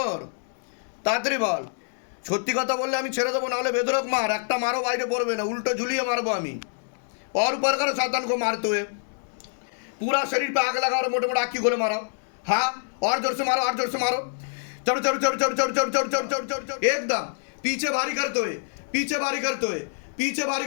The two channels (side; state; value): right; silent; digital silence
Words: তাড়াতাড়ি বল। সত্যি কথা বললে আমি ছেড়ে দেবো, নাহলে বেদরক মার, একটা মারও বাইরে পড়বে না, उल्टो झुलिए मारबो আমি। और ऊपर करो शैतान को मारते हुए, पूरा शरीर पे आग लगा और मोटे मोटे आँखी खोले मारो। हाँ, और जोर से मारो, चढ़ एकदम पीछे भारी